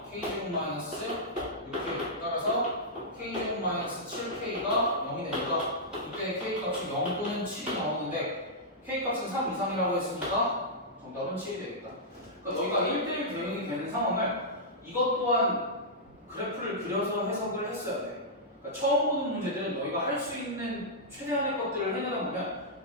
k제곱 마이너스 이렇게 따라서 k제곱 마이너스 7k가 0이 되니까 이때 k 값이 0 또는 7이 나오는데 k 값은 3 이상이라고 했으니까 정답은 7이 되겠다. 그러니까 너희가 1대1 대응이 되는 상황을 이것 또한 그래프를 그려서 해석을 했어야 돼. 그러니까 처음 보는 문제들은 너희가 할 수 있는 최대한의 것들을 해내다 보면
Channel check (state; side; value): normal; both; correlation -0.11